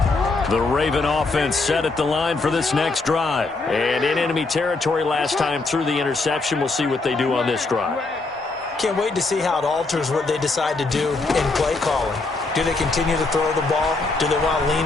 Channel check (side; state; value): right; quieter; 3.6 dB